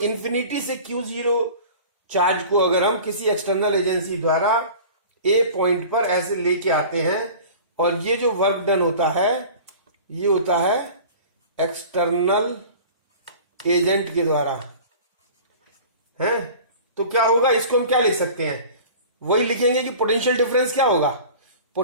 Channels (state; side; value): inverted; both; correlation -0.41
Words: इंफिनिटी से Q0 चार्ज को अगर हम किसी एक्सटर्नल एजेंसी द्वारा A पॉइंट पर ऐसे लेके आते हैं, और ये जो वर्क डन होता है ये होता है एक्सटर्नल एजेंट के द्वारा, है। तो क्या होगा, इसको हम क्या लिख सकते हैं? वही लिखेंगे कि पोटेंशियल डिफरेंस क्या होगा।